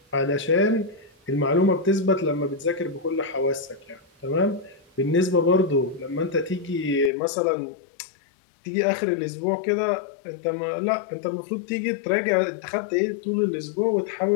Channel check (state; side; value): drops out; right; at 7.1 s